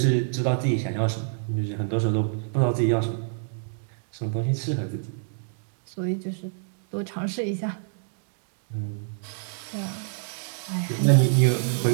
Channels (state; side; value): silent; left; digital silence